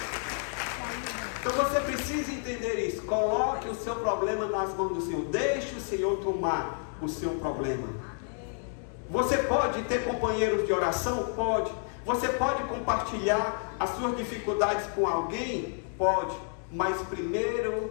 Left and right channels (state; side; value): silent; right; 58 dB below the other